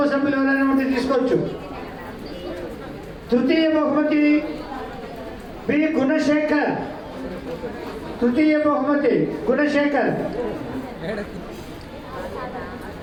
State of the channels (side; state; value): both; identical; correlation 1.00